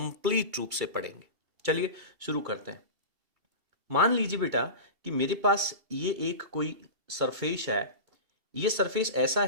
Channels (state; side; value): late; left; 2.7 ms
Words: रूप से पढ़ेंगे। चलिए शुरू करते हैं। मान लीजिए बेटा कि मेरे पास ये एक कोई सरफेस है। ये सरफेस ऐसा